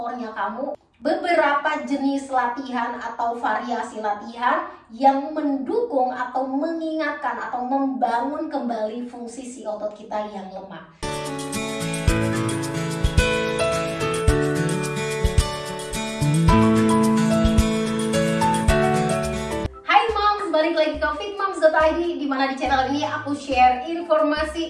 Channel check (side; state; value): both; identical; correlation 1.00